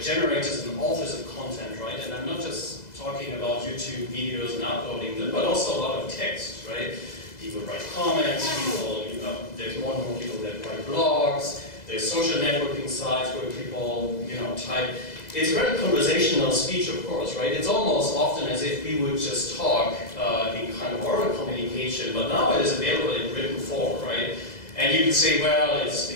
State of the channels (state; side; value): late; right; 2.0 ms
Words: generators and authors of content, right? And I'm not just talking about YouTube videos and uploading them, but also a lot of text, right? People write comments, there's more and more people that write blogs, there's social networking sites where people, type. It's very conversational speech, of course, right? It's almost often as if we would just talk in kind of oral communication, but now it is available in written form, right? And you could say, well,